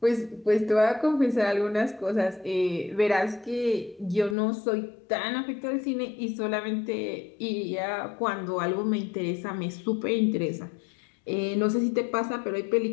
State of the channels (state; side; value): drops out; right; at 4.4 s